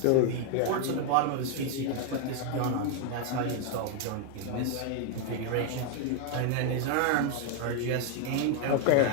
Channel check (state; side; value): different; both; correlation 0.01